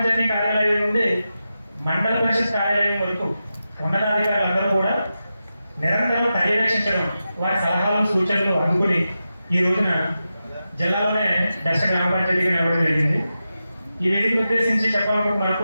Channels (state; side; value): inverted; both; correlation -0.91